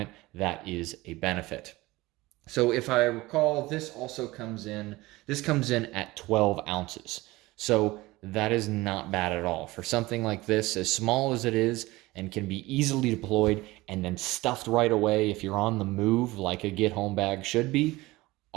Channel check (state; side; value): quieter; left; 20.0 dB